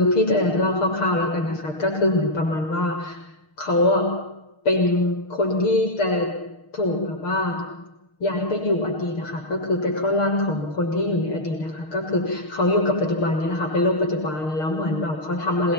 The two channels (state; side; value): late; right; 6.5 ms